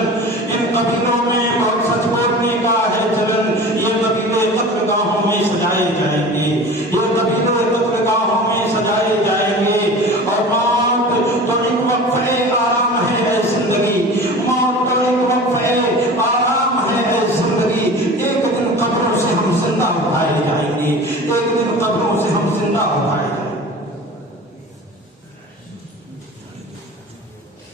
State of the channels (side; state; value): both; normal; correlation 0.37